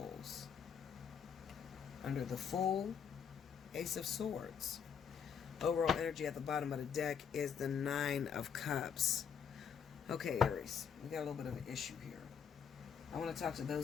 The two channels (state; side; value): quieter; right; 7.4 dB